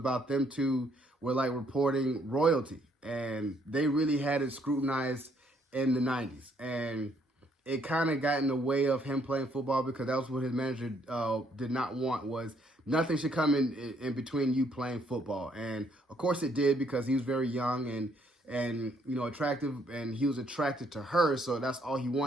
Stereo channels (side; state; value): both; normal; correlation 0.69